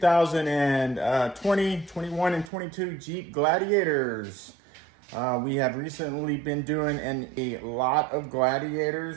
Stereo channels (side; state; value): left; drops out; at 2.5 s